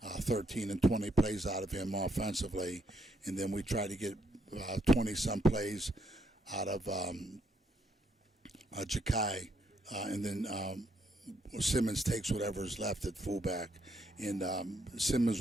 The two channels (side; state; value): both; normal; correlation 0.74